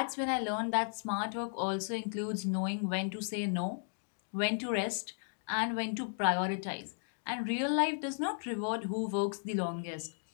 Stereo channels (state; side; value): silent; right; digital silence